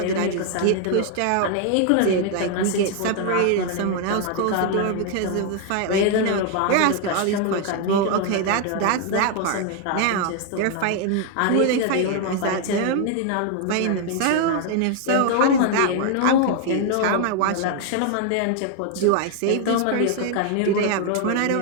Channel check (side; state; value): both; different; correlation 0.00